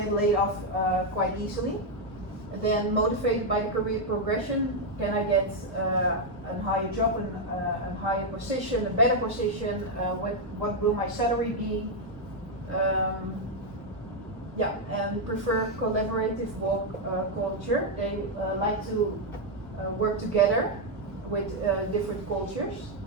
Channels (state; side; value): normal; both; correlation 0.01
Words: laid off quite easily? And then motivated by the career progression, can I get a higher job, a higher position, a better position? What will my salary be? And prefer collaborative work culture. They like to work together with different cultures.